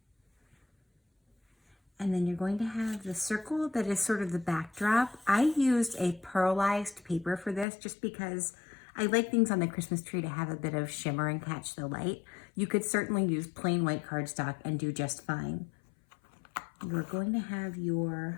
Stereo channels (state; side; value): drops out; right; at 7.7 s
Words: And then you're going to have the circle that is sort of the backdrop. I used a pearlized paper for this just because I like things on the Christmas tree to have a bit of shimmer and catch the light. You could certainly use plain white cardstock and do just fine. You're going to have